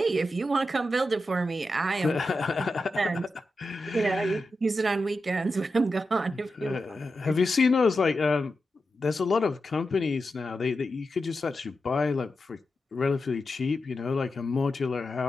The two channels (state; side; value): normal; both; correlation 0.89